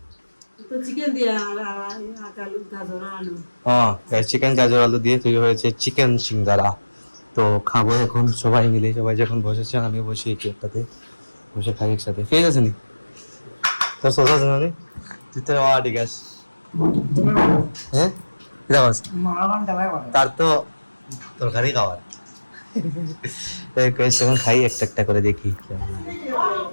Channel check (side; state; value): both; inverted; correlation -1.00